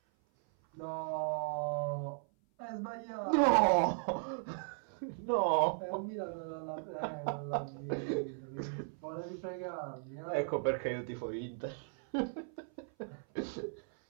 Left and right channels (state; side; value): silent; left; 53 dB below the other